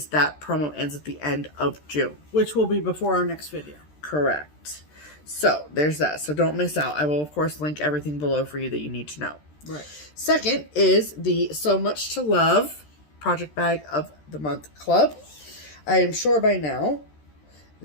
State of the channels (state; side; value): late; right; 13 ms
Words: that promo ends at the end of June. Which will be before our next video. Correct. So there's that. So don't miss out. I will, of course, link everything below for you that you need to know. Right. Second is the SewMuch2Luv Project Bag of the Month Club. I am sure by now